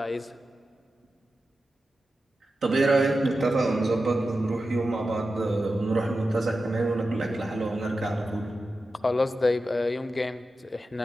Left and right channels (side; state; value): both; normal; correlation 0.92